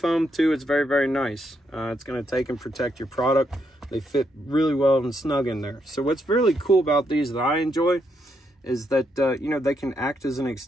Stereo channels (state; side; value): normal; both; correlation 0.78